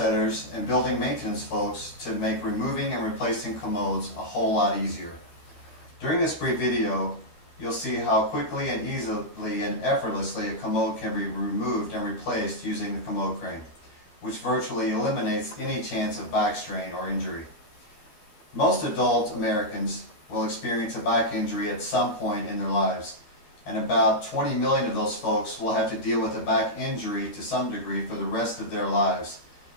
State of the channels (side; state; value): right; late; 12 ms